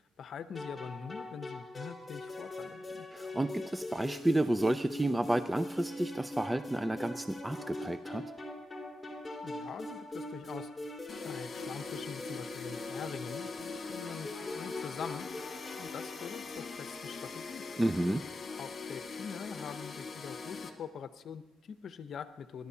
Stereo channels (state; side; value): normal; both; correlation 0.91